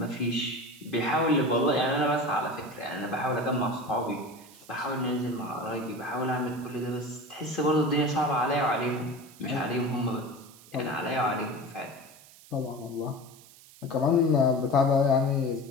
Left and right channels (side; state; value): right; noise; hiss, 22 dB below the sound